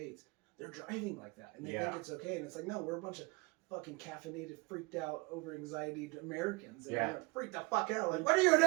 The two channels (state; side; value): quieter; left; 25.3 dB